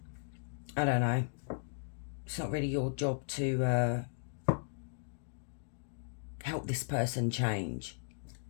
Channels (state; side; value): silent; right; digital silence